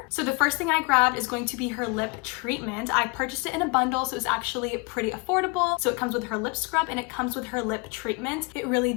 So the first thing I grabbed is going to be her lip treatment. I purchased it in a bundle, so it's actually pretty affordable. So it comes with her lip scrub and it comes with her lip treatment. It really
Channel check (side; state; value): right; quieter; 30.5 dB